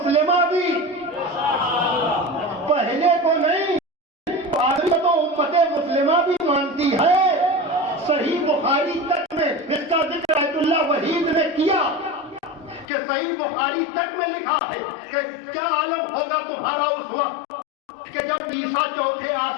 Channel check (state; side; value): drops out; right; at 12.9 s